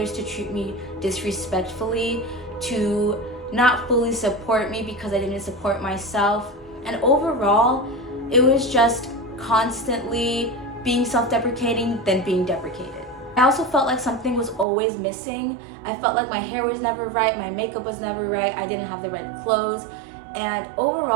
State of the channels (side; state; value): left; drops out; at 14.7 s